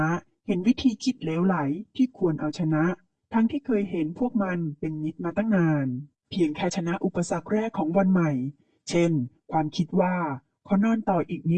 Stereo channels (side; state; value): both; identical; correlation 1.00